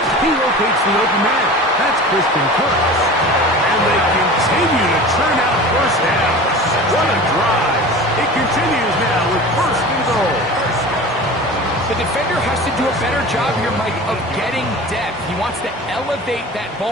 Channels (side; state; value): both; normal; correlation 0.36